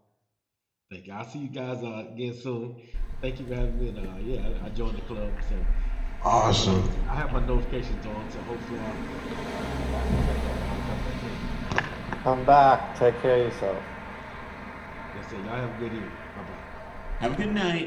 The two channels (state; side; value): identical; both; correlation 1.00